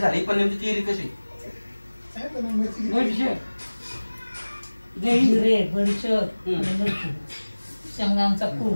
पण नेमकी चिरी कशी शेंगांचा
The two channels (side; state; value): both; inverted; correlation -1.00